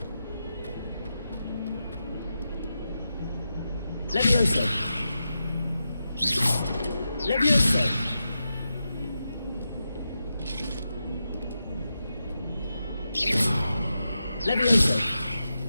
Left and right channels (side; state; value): both; inverted; correlation -0.89